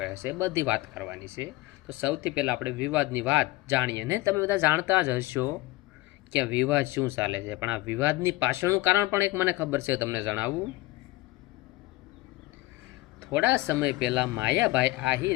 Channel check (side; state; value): right; quieter; 19.1 dB